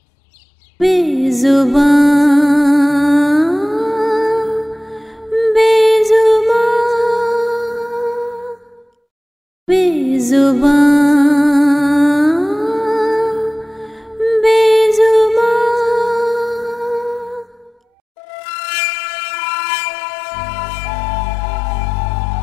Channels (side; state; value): both; normal; correlation 0.96